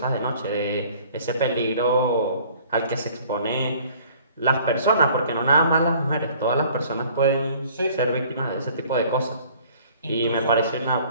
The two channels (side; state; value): both; inverted; correlation -0.53